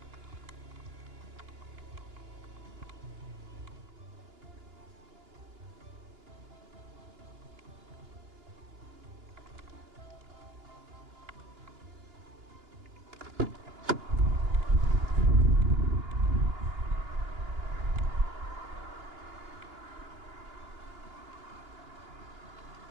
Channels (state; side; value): late; left; 2.9 ms